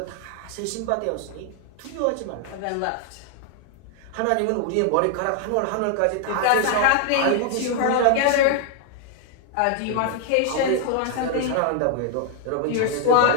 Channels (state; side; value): different; both; correlation 0.00